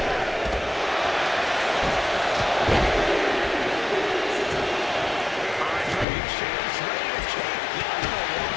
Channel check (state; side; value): drops out; right; at 6.1 s